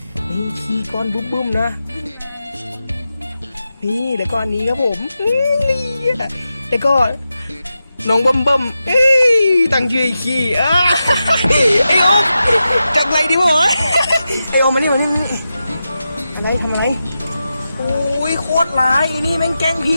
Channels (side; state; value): both; inverted; correlation -0.90